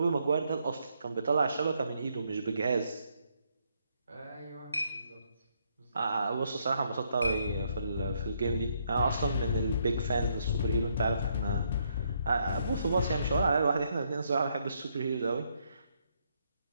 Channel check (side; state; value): both; inverted; correlation -0.73